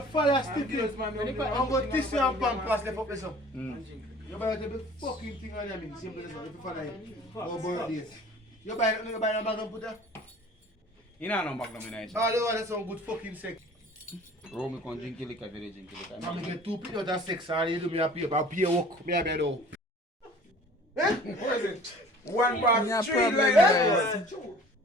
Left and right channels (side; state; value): both; normal; correlation 0.48